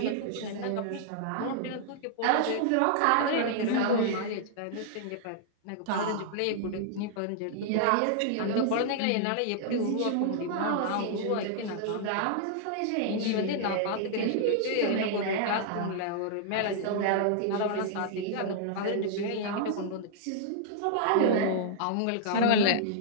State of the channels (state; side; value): different; both; correlation -0.01